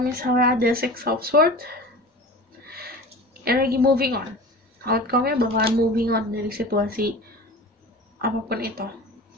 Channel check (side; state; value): both; normal; correlation 0.36